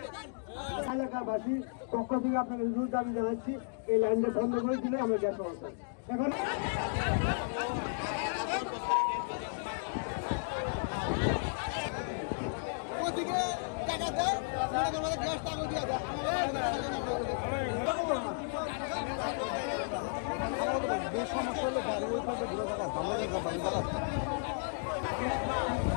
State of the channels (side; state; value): right; silent; digital silence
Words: এলাকাবাসী পক্ষ থেকে আপনাকে জোর দাবি জানাচ্ছি, এই লাইনটা বন্ধ করে দিলে আমরা গ্যাস সমস্যা এখন সমস্যা হলে গাড়ি ওই পাশে ঘুরে থাকা ভালো জায়গা বাড়ি জায়গা